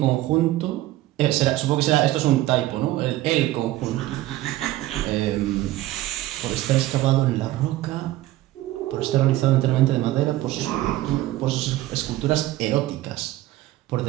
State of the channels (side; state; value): left; quieter; 15.8 dB